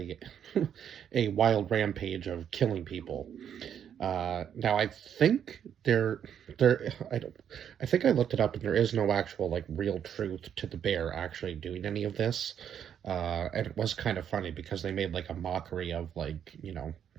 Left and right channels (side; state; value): left; quieter; 8.9 dB